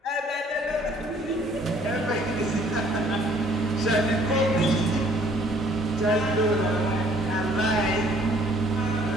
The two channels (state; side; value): normal; both; correlation 0.60